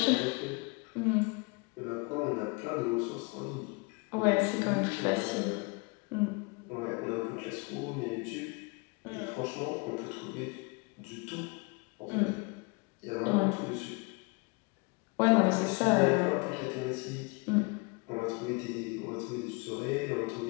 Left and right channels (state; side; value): quieter; right; 30.0 dB